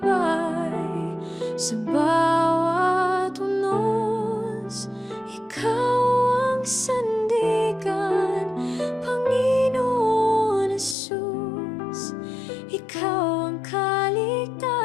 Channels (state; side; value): drops out; right; at 11.0 s